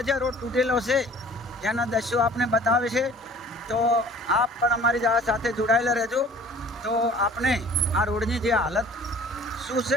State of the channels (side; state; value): both; normal; correlation 0.49